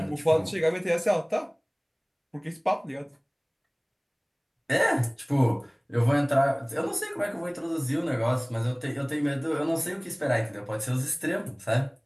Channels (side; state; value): both; identical; correlation 1.00